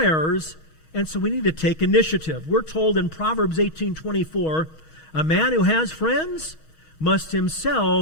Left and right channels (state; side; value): late; right; 6.3 ms